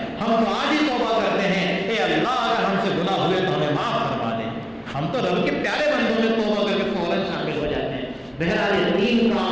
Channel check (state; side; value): identical; both; correlation 1.00